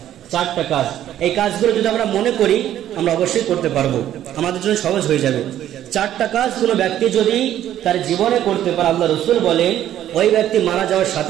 4টা কাজ। এই কাজগুলো যদি আমরা মনে করি আমরা অবশ্যই করতে পারবো, আমাদের জন্য সহজ হয়ে যাবে। 4টা কাজ কোন ব্যক্তি যদি তার জীবনে করতে পারে, আল্লাহ রাসূল বলেন ওই ব্যক্তি মারা যাওয়ার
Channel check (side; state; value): left; quieter; 11.8 dB